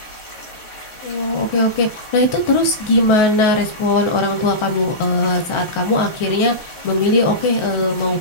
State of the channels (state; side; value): late; right; 1.4 ms